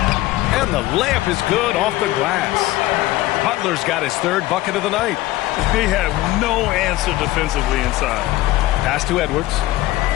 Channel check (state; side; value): quieter; right; 16.8 dB